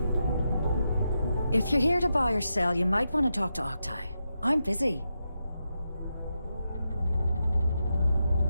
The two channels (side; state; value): both; inverted; correlation -0.86